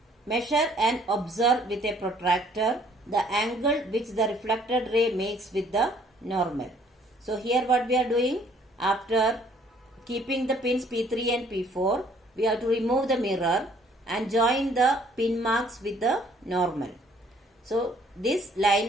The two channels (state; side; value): normal; both; correlation 0.61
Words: Measure and observe with a protractor the angle which the reflected ray makes with the normal. So here what we are doing, after keeping the pins P3 and P4, we have to remove the mirror and join the pin marks with the normal. So this